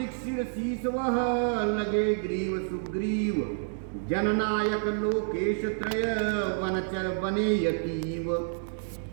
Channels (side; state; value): left; silent; 59 dB below the other